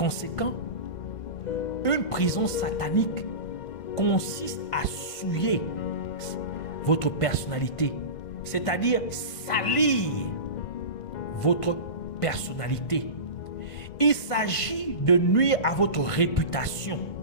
une prison satanique consiste à souiller votre personnalité, c'est-à-dire salir votre personnalité. Il s'agit de nuire à votre réputation.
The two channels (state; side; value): late; right; 1.5 ms